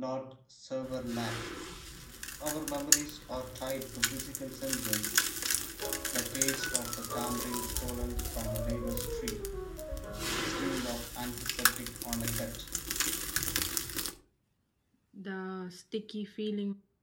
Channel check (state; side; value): identical; both; correlation 1.00